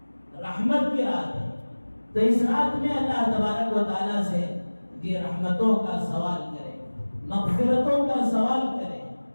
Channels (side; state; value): both; inverted; correlation -1.00